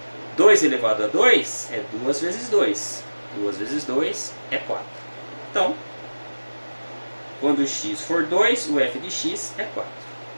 2 elevado a 2 é 2 vezes 2. 2 vezes 2 é 4. Então, quando x for 2, o f de x é 4.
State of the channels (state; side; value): inverted; both; correlation -1.00